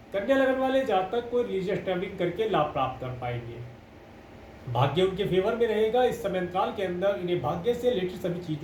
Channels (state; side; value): identical; both; correlation 1.00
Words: कन्या लगन वाले जातक को रिलीजियस ट्रैवलिंग करके लाभ प्राप्त कर पाएंगे। भाग्य उनके फेवर में रहेगा। इस समय अंतराल के अंदर इन्हें भाग्य से रिलेटेड सभी